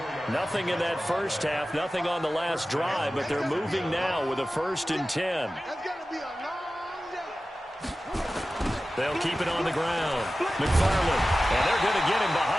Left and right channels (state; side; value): normal; both; correlation 0.95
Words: Nothing in that first half, nothing on the last drive, but they're moving now with a 1st and 10. They'll keep it on the ground. McFarland, and they're going to get him